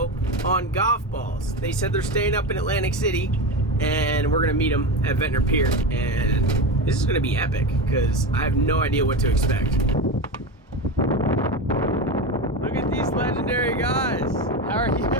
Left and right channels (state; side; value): normal; both; correlation 0.20